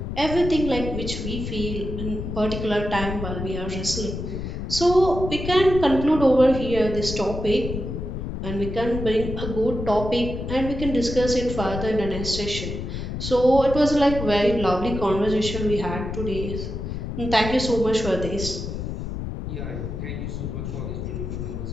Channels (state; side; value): noise; left; rumble, 5 dB below the sound